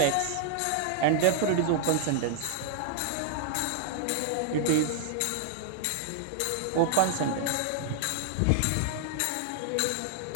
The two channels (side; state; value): both; different; correlation -0.01